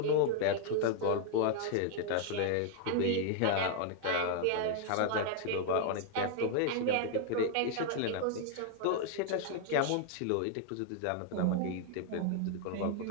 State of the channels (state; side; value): different; both; correlation 0.00